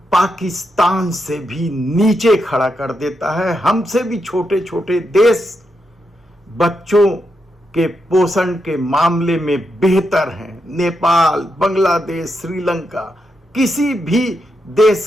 पाकिस्तान से भी नीचे खड़ा कर देता है। हमसे भी छोटे छोटे देश बच्चों के पोषण के मामले में बेहतर हैं। नेपाल, बांग्लादेश, श्रीलंका, किसी भी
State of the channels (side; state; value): both; normal; correlation 0.84